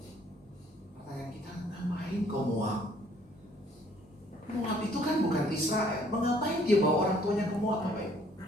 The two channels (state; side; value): normal; both; correlation 0.61